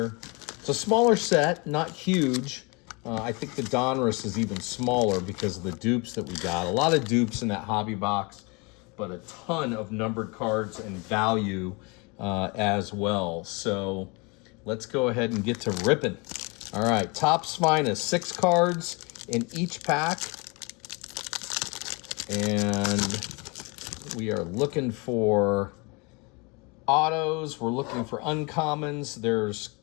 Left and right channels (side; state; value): right; quieter; 29.2 dB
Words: It's a smaller set, not huge. I think the Donruss is even smaller because of the dupes that we got. A lot of dupes in that hobby box, but a ton of numbered cards and value as well. So let's go ahead and get to ripping. All right, Topps Finest, 6 cards in each pack. And we are looking for autos. We're looking for uncommons. There's